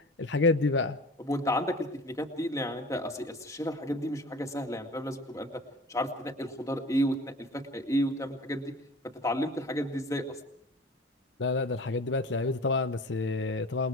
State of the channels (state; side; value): normal; both; correlation 0.40